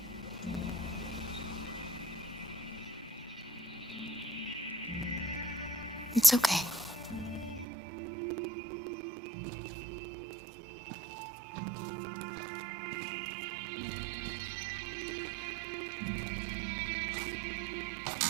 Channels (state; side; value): drops out; left; at 7.7 s